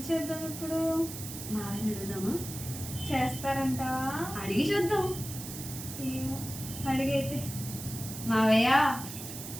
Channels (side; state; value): right; noise; hiss, 9 dB below the sound